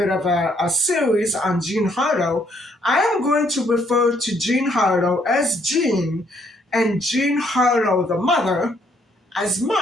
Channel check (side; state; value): both; normal; correlation 0.68